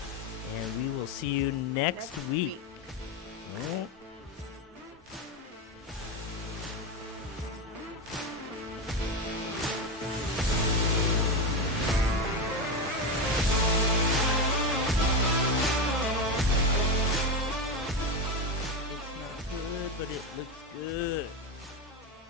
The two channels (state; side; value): normal; both; correlation 0.14